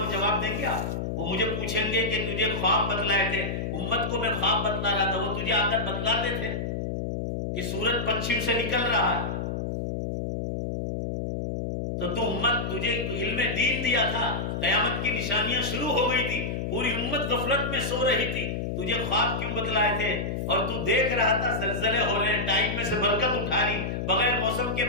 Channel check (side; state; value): left; noise; hum, 3 dB below the sound